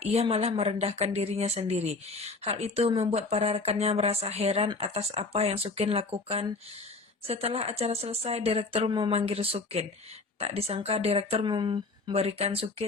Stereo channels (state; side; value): quieter; right; 3.6 dB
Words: malah merendahkan dirinya sendiri. Hal itu membuat para rekannya merasa heran atas apa yang Sukin lakukan. Setelah acara selesai, direktur memanggil Sukin. Tak disangka direktur memberikan